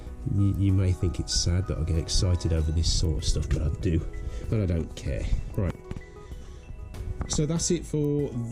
You may think it's sad that I get excited over this sort of stuff, but I do, and I don't care. Right, so that's it for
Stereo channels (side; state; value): both; identical; correlation 1.00